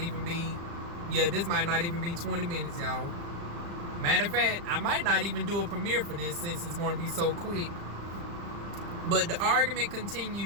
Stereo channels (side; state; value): left; late; 35 ms